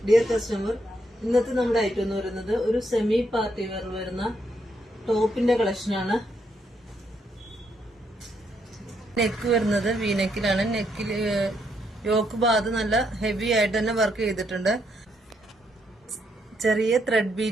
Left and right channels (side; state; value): both; normal; correlation 0.76